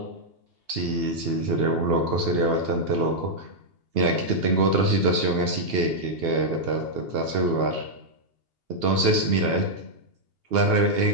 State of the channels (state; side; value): late; left; 2.8 ms